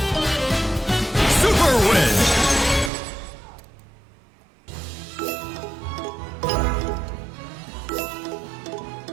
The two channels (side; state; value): left; drops out; at 2.9 s